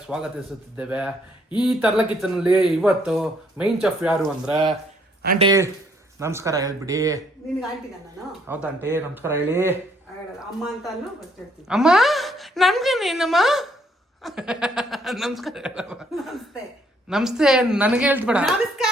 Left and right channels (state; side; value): normal; both; correlation 0.67